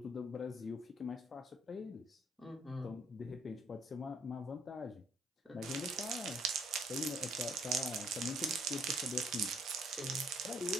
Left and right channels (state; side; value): normal; both; correlation 0.64